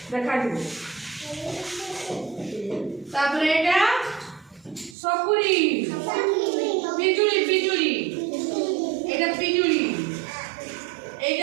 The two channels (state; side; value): drops out; left; at 5.0 s